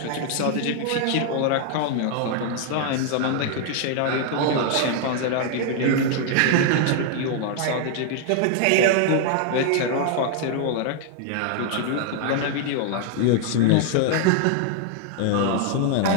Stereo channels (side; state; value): both; different; correlation 0.00